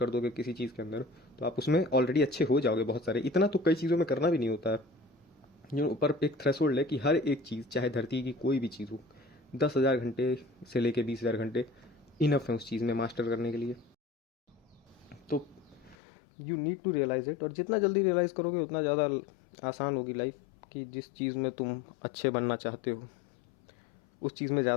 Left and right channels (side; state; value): right; drops out; at 16.0 s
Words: दोगे किसी चीज़ के अंदर तो आप उसमें ऑलरेडी अच्छे हो जाओगे बहुत सारे। इतना तो कई चीज़ों में करना भी नहीं होता है। जो ऊपर एक थ्रेशोल्ड है कि हर एक चीज़ चाहे धरती की कोई भी चीज़ हो, 10,000 घंटे से लेके 20,000 घंटे इनफ है उस चीज़ में मास्टर करने के लिए। तो you need to realize it, और जितना जल्दी रियलाइज़ करोगे उतना ज़्यादा आसान होगी लाइफ। कि जिस चीज़ में तुम अच्छे बनना चाहते हो उस चीज़ में